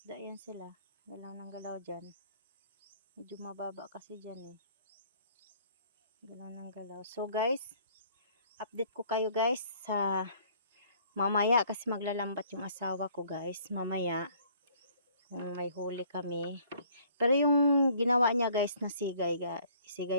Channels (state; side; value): inverted; both; correlation -0.59